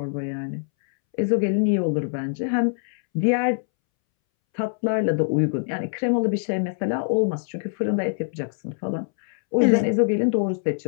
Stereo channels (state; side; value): silent; right; 63 dB below the other